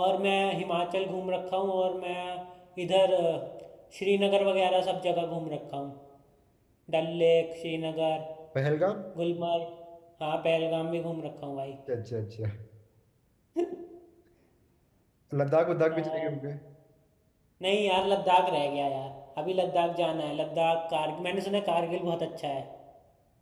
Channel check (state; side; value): identical; both; correlation 1.00